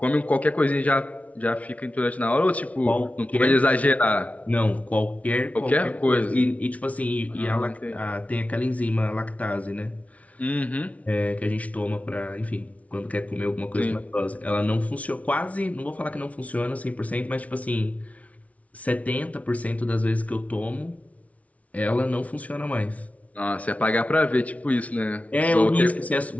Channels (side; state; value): right; late; 0.067 ms